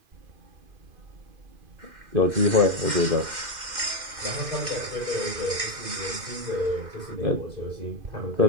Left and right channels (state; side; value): late; left; 2.5 ms